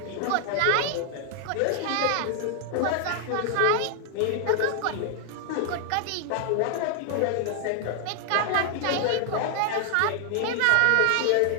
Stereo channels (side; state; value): both; different; correlation 0.00